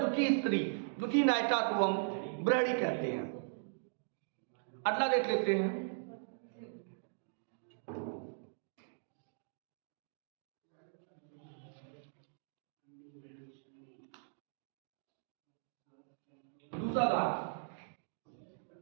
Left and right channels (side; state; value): left; silent; digital silence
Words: स्त्री, दुखी नायिका को हम बिरहड़ी कहते हैं। अगला देख लेते हैं। दूसरा भाग,